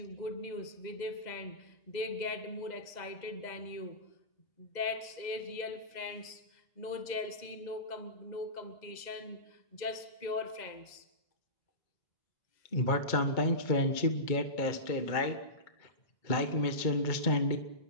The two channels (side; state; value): right; late; 2.0 ms